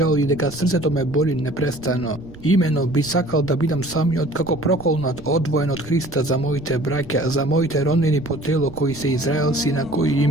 и дека срцето ме боли непрестано. Имено би сакал да бидам самиот како проколнат, одвоен од Христа за моите браќа, за моите роднини по тело кои се израелци на кои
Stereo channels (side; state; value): right; noise; rumble, 18 dB below the sound